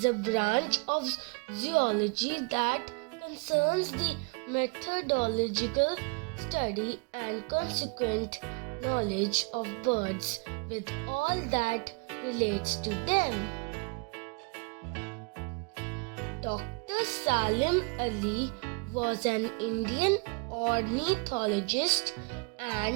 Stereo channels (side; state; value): left; quieter; 32.0 dB